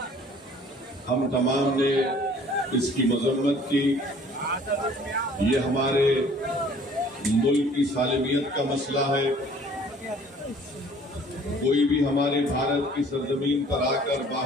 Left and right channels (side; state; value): both; normal; correlation 0.54